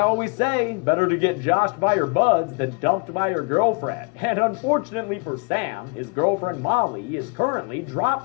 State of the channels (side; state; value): right; quieter; 32.0 dB